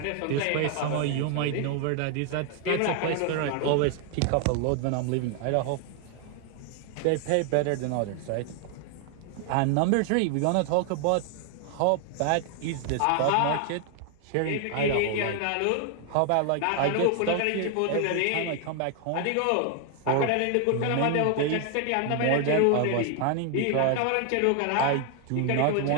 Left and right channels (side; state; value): both; different; correlation 0.00